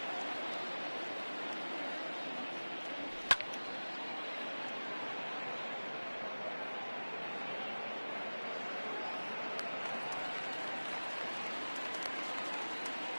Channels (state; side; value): inverted; both; correlation -1.00